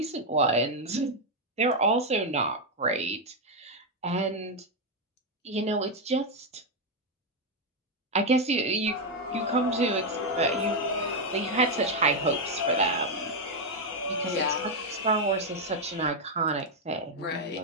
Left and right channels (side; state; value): both; normal; correlation 0.02